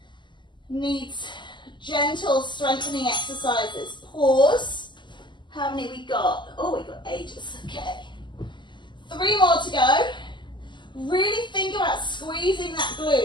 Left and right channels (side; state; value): right; late; 0.22 ms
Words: needs gentle strengthening exercises. Pause. How many we got? Oh, we got ages. Okay. 3 more to go. Really think about squeezing that